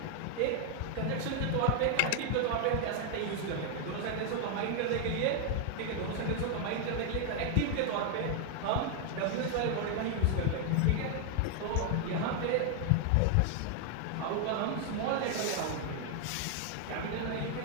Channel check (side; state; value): both; different; correlation 0.00